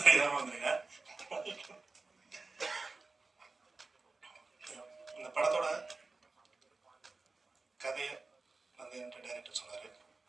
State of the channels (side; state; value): left; quieter; 3.8 dB